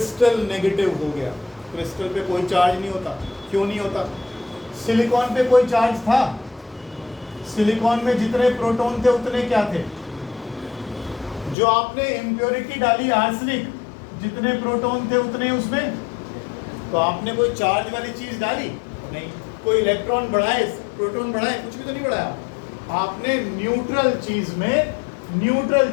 नेगेटिव हो गया। क्रिस्टल पे कोई चार्ज नहीं होता। क्यों नहीं होता? सिलिकॉन पे कोई चार्ज था। सिलिकॉन में जितने प्रोटॉन थे उतने क्या थे? जो आपने इम्प्योरिटी डाली आर्सेनिक, जितने प्रोटॉन थे उतने उसमें, तो आपने कोई चार्ज वाली चीज डाली नहीं। कोई इलेक्ट्रॉन बढ़ाए, प्रोटॉन बढ़ाए, कुछ भी तो नहीं बढ़ाया। आपने न्यूट्रल चीज में न्यूट्रल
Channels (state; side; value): drops out; right; at 11.6 s